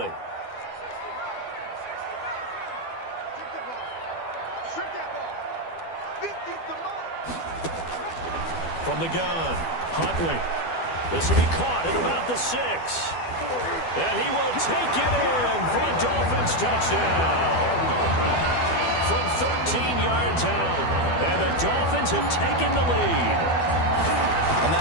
From the gun, Huntley. This will be caught at about the 6. And he will take it in for a Dolphins touchdown. From 13 yards out. And the Dolphins have taken the lead. On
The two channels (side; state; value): right; late; 12 ms